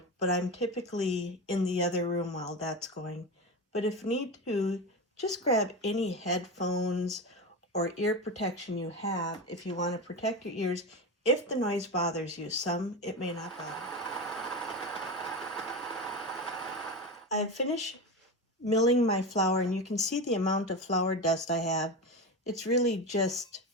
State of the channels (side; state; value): both; normal; correlation 0.21